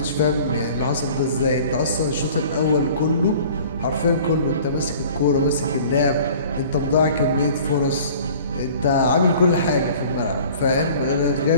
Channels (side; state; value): both; inverted; correlation -0.48